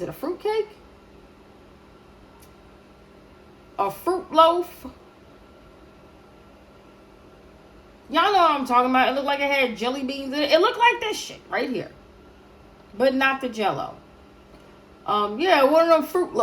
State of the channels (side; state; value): both; identical; correlation 1.00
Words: it, a fruit cake? A fruit loaf? Y'all know what I'm talking about. It looked like it had jelly beans in it. It looked like this shit right here. But not the Jell-O. Yeah, one of them fruit